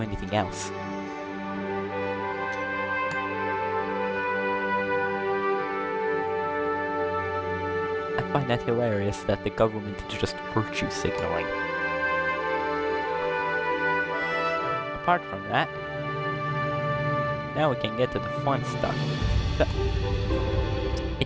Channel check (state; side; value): identical; both; correlation 1.00